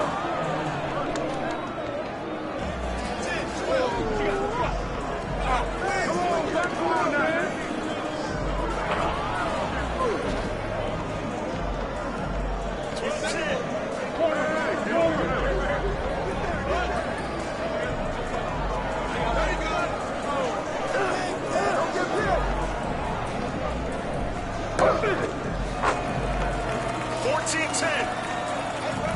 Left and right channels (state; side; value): identical; both; correlation 1.00